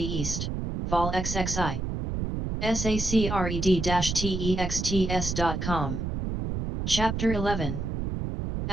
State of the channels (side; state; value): right; noise; rumble, 3 dB below the sound